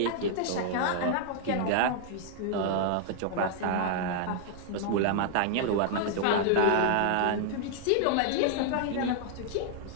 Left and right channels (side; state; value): both; different; correlation -0.01